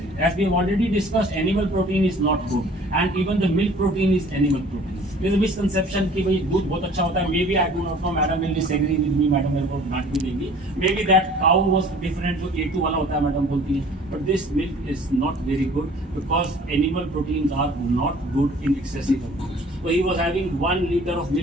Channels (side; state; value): both; normal; correlation 0.50